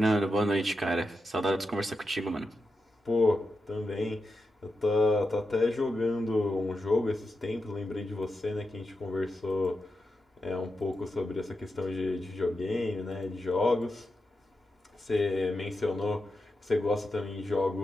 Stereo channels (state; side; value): normal; both; correlation 0.88